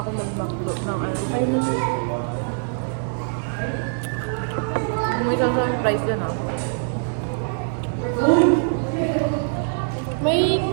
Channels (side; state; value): left; silent; 63 dB below the other